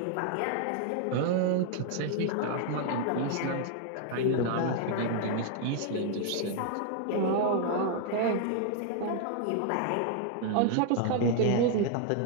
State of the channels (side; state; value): both; different; correlation 0.00